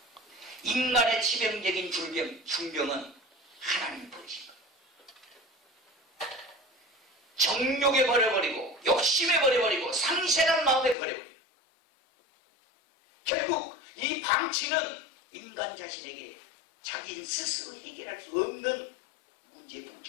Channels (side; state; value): right; drops out; at 11.0 s